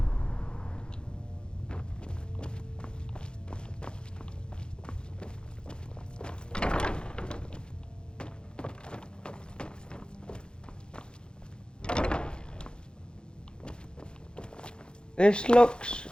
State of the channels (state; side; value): late; right; 0.050 ms